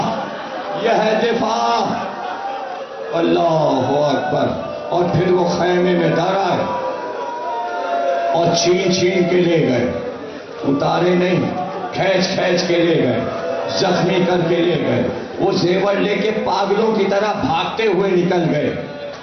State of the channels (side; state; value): both; identical; correlation 1.00